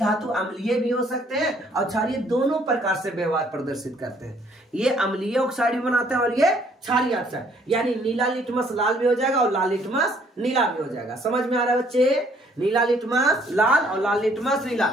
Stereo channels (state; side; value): normal; both; correlation 0.63